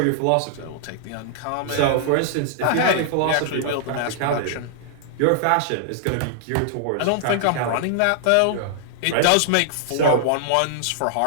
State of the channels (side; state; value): both; different; correlation -0.01